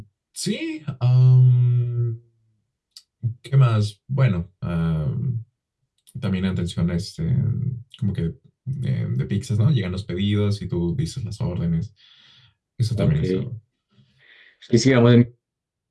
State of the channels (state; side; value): identical; both; correlation 1.00